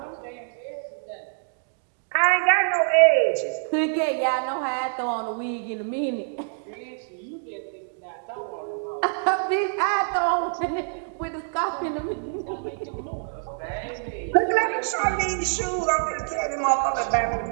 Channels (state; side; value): silent; left; digital silence